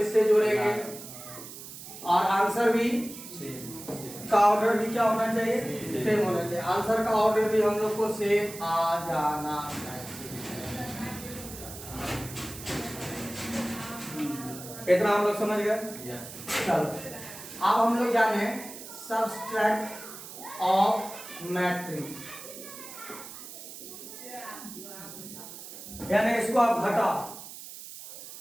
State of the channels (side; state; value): right; noise; hiss, 13 dB below the sound